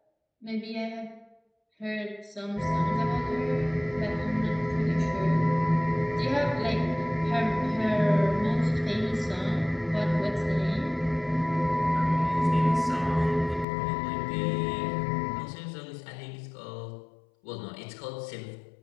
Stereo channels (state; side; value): drops out; right; at 13.7 s